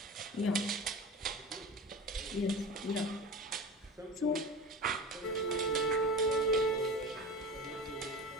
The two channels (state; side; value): normal; both; correlation 0.31